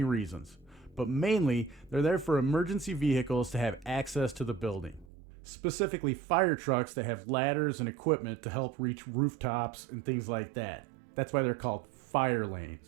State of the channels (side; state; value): left; drops out; at 5.1 s